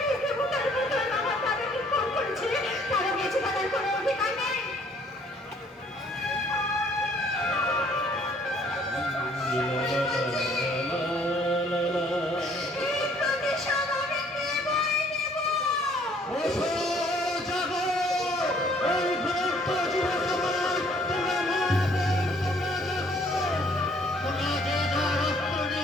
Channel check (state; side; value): normal; both; correlation 0.61